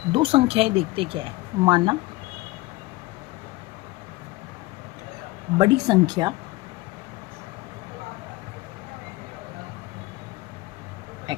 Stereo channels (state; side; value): quieter; right; 19.9 dB